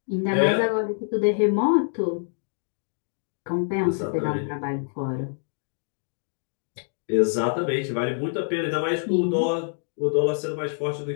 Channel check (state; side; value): silent; right; digital silence